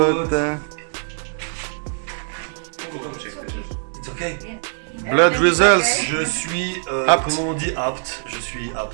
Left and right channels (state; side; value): silent; left; 64 dB below the other